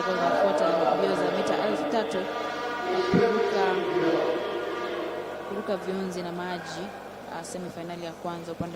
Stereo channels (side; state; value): both; identical; correlation 1.00